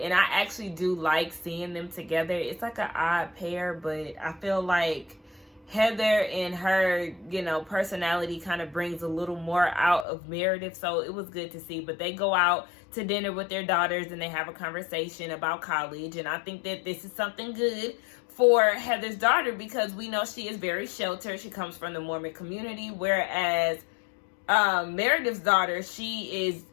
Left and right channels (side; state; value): right; drops out; at 10.1 s